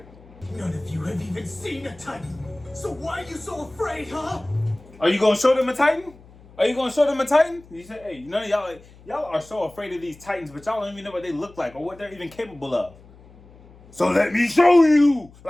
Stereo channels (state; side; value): noise; left; hum, 24 dB below the sound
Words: None of you have even seen a Titan. So why are you so afraid, huh? Are you going to show them a Titan? Are you going to show them a Titan? You say, hey, none of y'all are so afraid of these Titans, but y'all don't even know what they look like or what they're even capable of. So let me show you.